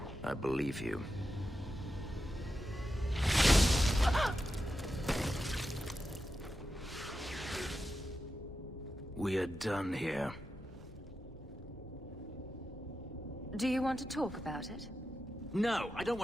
I believe you. We are done here. Do you want to talk about it? No, I don't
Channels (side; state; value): both; normal; correlation 0.90